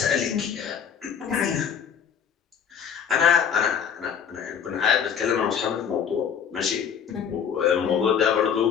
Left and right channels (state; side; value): quieter; right; 7.7 dB